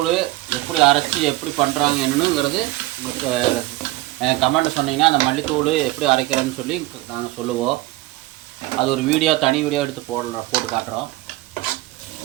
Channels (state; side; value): quieter; left; 18.6 dB